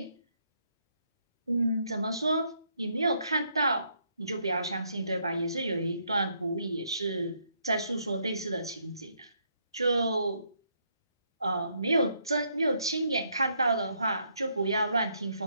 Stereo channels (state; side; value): inverted; both; correlation -0.73